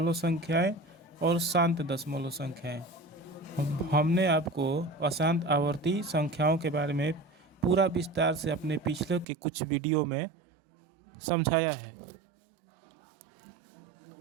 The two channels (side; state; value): left; drops out; at 9.2 s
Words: संख्याएं और शांत दशमलव संख्याएं। हमने आपको अशांत आवर्ती संख्याओं के बारे में पूरा विस्तार से अपने पिछले के कुछ वीडियो में समझाया है।